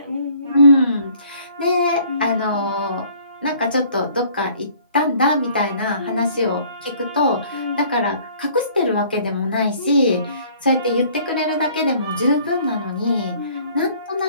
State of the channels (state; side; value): inverted; both; correlation -0.56